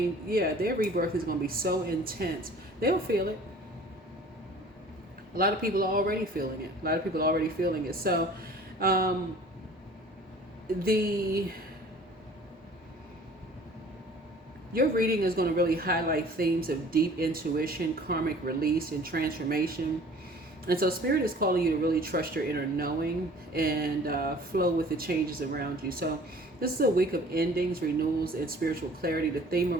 going to be so intense. They'll feel it. A lot of people are already feeling it. So, your reading is going to really highlight themes of deep intuition, karmic release, and transformation. And so Spirit is calling you to really trust your inner knowing and flow with the changes around you. So this is a week of endings, renewals, and spiritual clarity. The theme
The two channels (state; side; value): normal; both; correlation 0.49